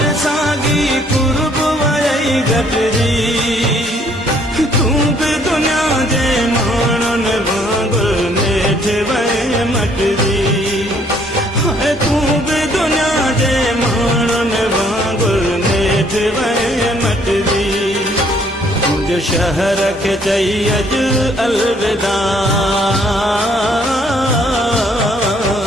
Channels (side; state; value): both; normal; correlation 0.64